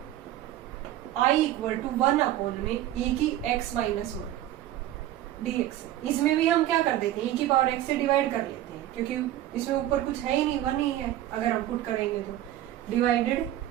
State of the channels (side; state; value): left; quieter; 13.4 dB